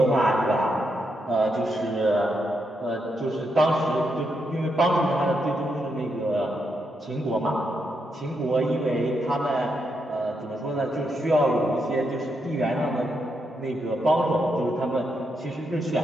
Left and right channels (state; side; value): normal; both; correlation 0.81